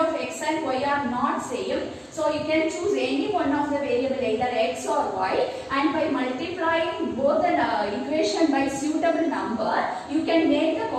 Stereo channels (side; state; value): both; identical; correlation 1.00